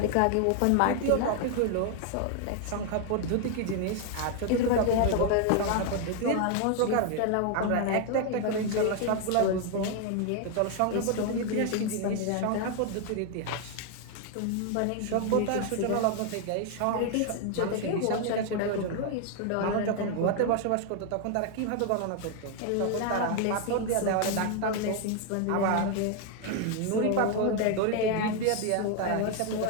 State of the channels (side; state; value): both; different; correlation 0.00